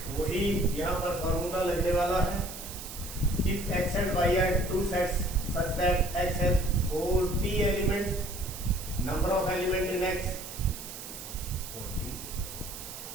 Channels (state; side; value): noise; right; hiss, 11 dB below the sound